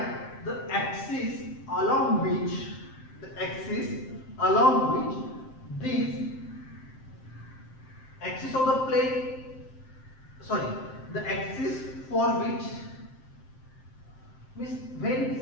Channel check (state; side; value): late; right; 7.6 ms